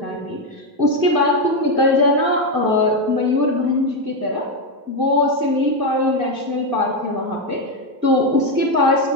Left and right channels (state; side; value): late; left; 2.0 ms